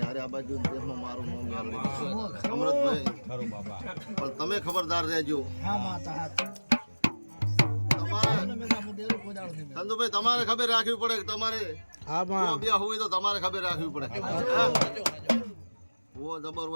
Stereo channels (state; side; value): inverted; both; correlation -1.00